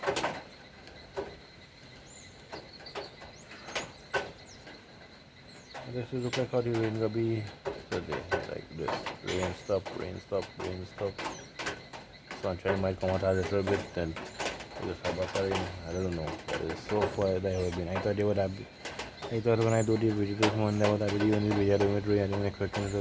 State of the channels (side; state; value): both; identical; correlation 1.00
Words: This is look like how the rain will be today, like this. Rain stop, rain stop, rain stop. Sunshine might come out a little bit, then it just have back rain. I don't know, but it's so far that have been. I thought they would have been. I thought when I do the video this morning, that would have been the only video I do with rain. I didn't expect it